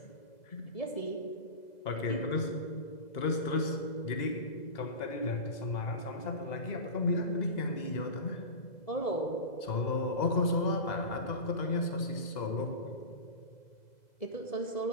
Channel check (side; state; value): right; late; 2.0 ms